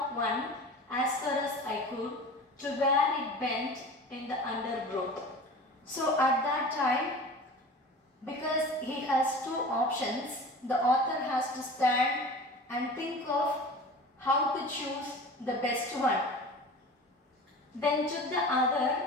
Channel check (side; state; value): both; normal; correlation 0.37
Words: one as far as I could to where it bent in the undergrowth. So at that time, because he has two options, the author has to stand and think of how to choose the best one. Then took the other